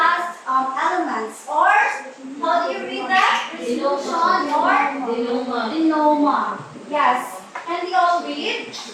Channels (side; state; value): both; identical; correlation 1.00